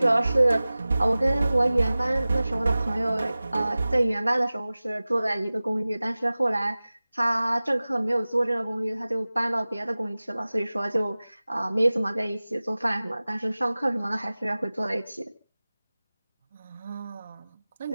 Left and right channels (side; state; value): both; inverted; correlation -0.98